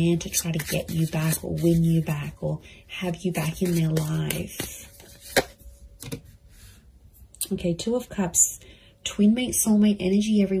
to try to get you back or win you back or have you back in their life. Okay, Two of Cups. Twin mate, soulmate energy,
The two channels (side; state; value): both; identical; correlation 1.00